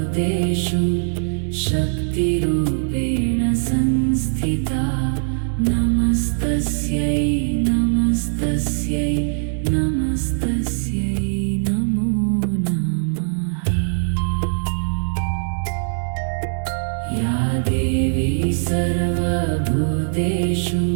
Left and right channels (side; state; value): left; silent; digital silence